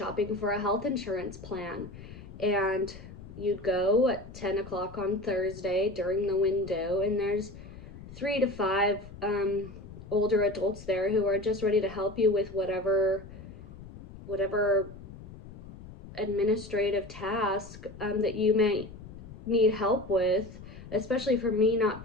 for a health insurance plan. And you'd go at 10 o'clock on Thursday during the window, and there's 3 to 5 older adults there who are just ready to help you with whatever administrative task that you may need help with, especially for me not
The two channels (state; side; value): noise; left; rumble, 15 dB below the sound